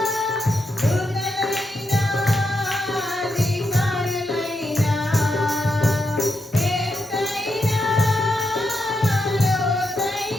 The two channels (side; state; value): both; normal; correlation 0.83